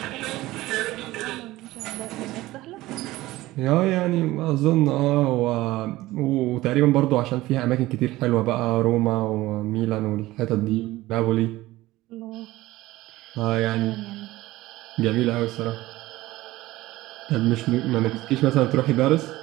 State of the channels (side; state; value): left; quieter; 17.6 dB